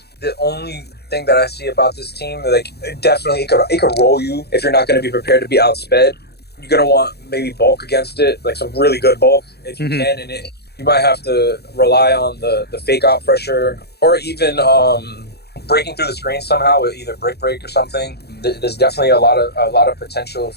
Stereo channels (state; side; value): late; right; 0.47 ms